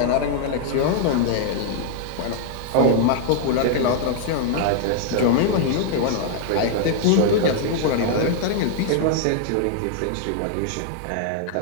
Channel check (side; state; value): both; different; correlation 0.00